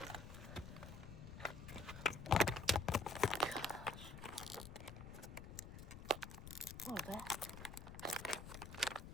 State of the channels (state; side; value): noise; left; rumble, 10 dB below the sound